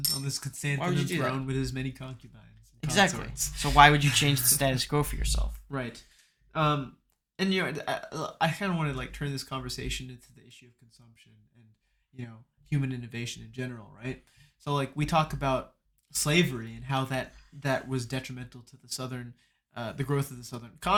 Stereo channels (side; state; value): both; identical; correlation 1.00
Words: on this Constantine throne with his many concubines. Exactly. So why would you change the status quo for yourself? Right. And I kind of want to turn this conversation into the issue of consumption and human innovation in general, right? So like we talk about slavery and how that was detrimental to the growth of the southern